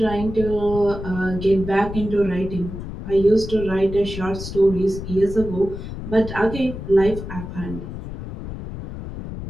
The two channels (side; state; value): left; noise; rumble, 9 dB below the sound